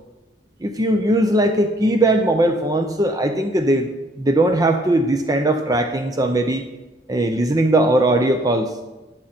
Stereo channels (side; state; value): both; normal; correlation 0.63